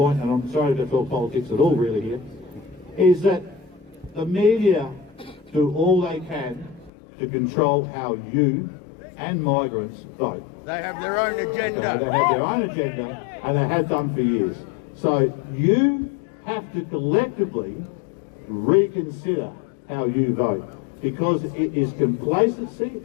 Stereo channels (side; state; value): right; drops out; at 6.9 s